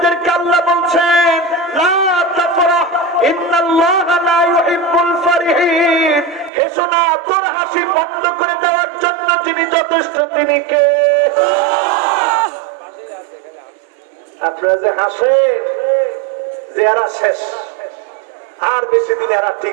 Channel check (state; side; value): drops out; left; at 6.5 s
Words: আল্লাহ বলছেন লা তাফরাহ ইন্নাল্লাহা লা ইউহিব্বুল ফারিহিন, হেসো না, তোর হাসি বন্ধ করে দেওয়ার জন্য যিনি যথেষ্ট, তিনি কে? আপনারা যে হাসেন যে এরা শেষ, আর বেশি দিন এরা